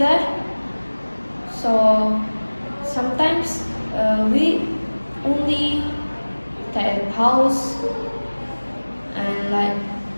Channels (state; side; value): inverted; both; correlation -1.00